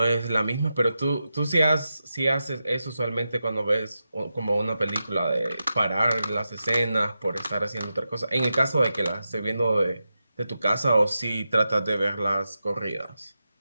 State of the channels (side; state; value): both; inverted; correlation -0.90